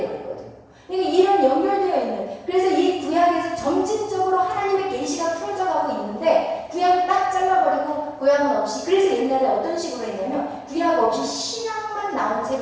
있거든요. 그러니까 이런 연결되어 있는, 그래서 이 구약에서 점진적으로 하나님의 계시가 풀어져가고 있는데 구약을 딱 잘라버리고 구약은 없이, 그래서 옛날에 어떤 식으로 했냐면 구약 없이 신약만 나온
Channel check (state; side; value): identical; both; correlation 1.00